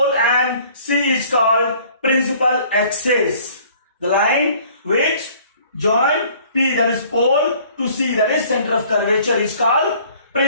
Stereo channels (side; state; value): both; inverted; correlation -0.55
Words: and C is called principal axis. The line which join P, that is pole, to C, that is center of curvature, is called